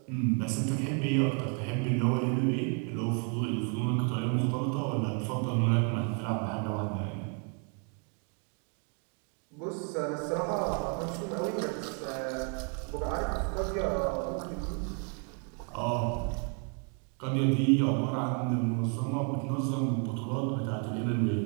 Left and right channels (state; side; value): quieter; left; 39.9 dB